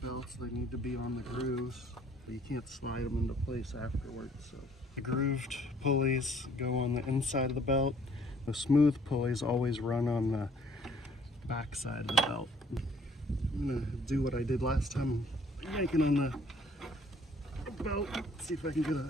belts, they need to be on the grooves, but you can't slide them into place afterwards. So the grooved pulleys go on the inside of the belt. The smooth pulleys always run on the back side of the belt. I'm gonna do what I did last time, yanking on the belt. See if I can get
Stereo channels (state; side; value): normal; both; correlation 0.59